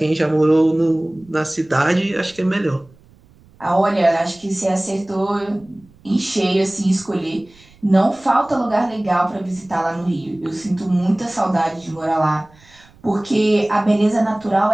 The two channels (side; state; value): right; noise; rumble, 28 dB below the sound